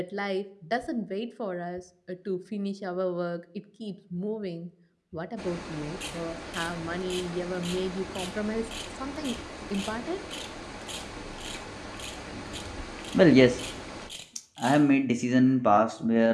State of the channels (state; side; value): identical; both; correlation 1.00